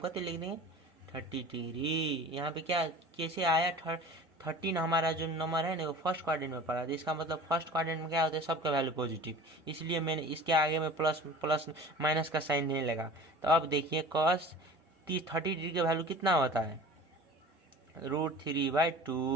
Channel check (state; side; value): normal; both; correlation 0.41